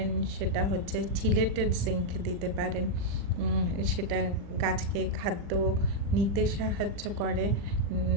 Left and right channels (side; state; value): left; late; 40 ms